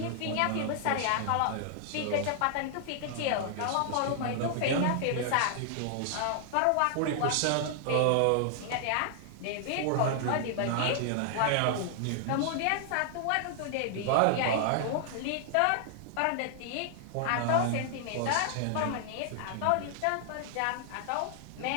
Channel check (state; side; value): different; both; correlation -0.01